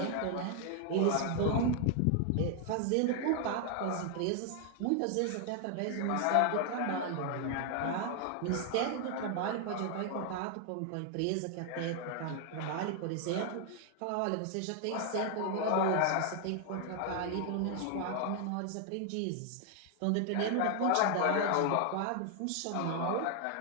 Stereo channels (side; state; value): both; different; correlation 0.00